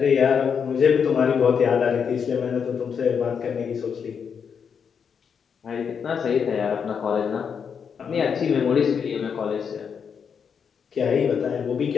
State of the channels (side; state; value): right; quieter; 6.8 dB